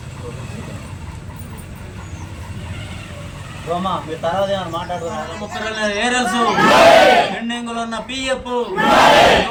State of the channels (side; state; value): both; identical; correlation 1.00